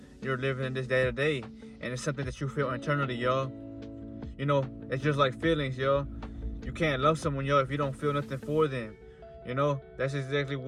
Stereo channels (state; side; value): identical; both; correlation 1.00